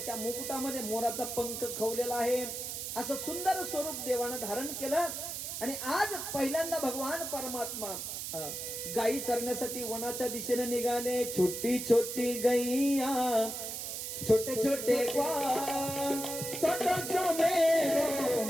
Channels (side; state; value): right; noise; hiss, 5 dB below the sound